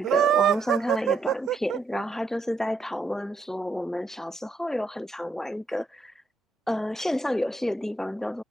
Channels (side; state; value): left; quieter; 3.2 dB